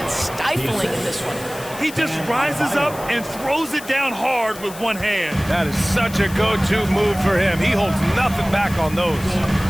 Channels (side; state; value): left; noise; hiss, 15 dB below the sound